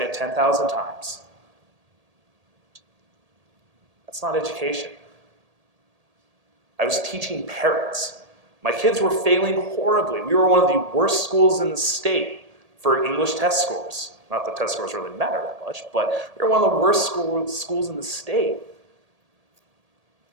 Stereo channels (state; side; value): late; left; 1.8 ms